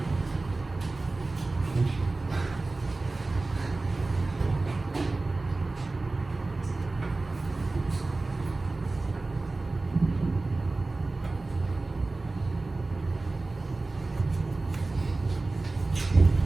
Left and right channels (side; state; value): left; quieter; 3.3 dB